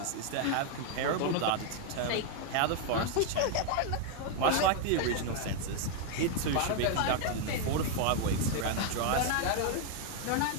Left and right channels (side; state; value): both; different; correlation 0.00